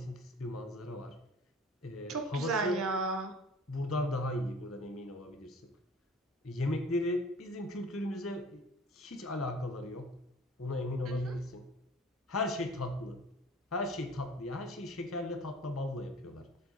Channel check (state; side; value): normal; both; correlation 0.47